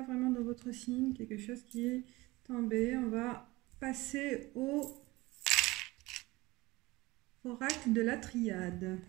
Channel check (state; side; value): quieter; left; 21.2 dB